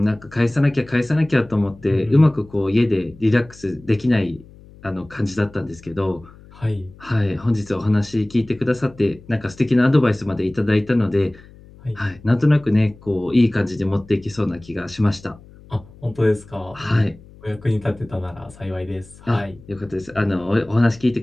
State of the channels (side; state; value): left; noise; hum, 22 dB below the sound